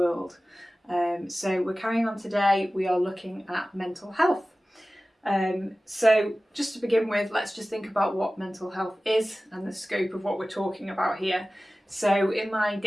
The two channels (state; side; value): normal; both; correlation 0.97